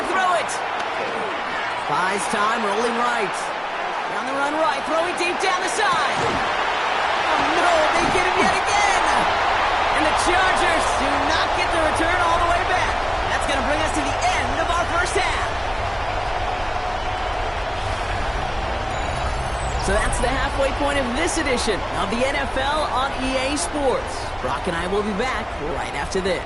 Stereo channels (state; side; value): identical; both; correlation 1.00